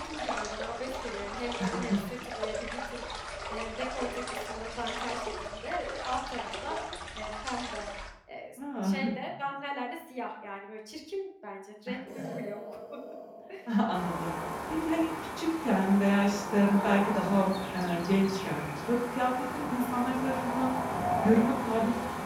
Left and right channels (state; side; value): identical; both; correlation 1.00